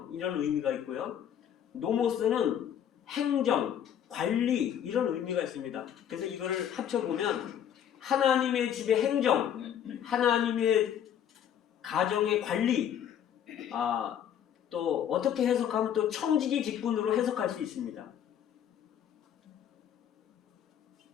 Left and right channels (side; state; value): right; quieter; 9.5 dB